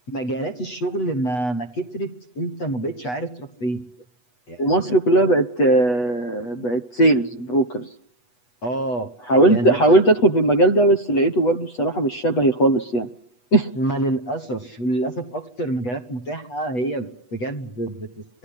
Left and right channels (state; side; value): late; right; 8.2 ms